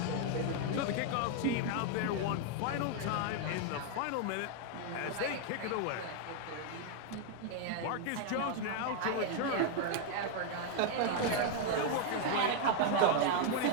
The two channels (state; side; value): different; both; correlation 0.00